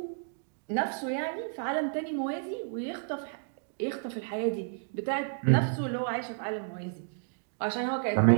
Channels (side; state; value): left; silent; digital silence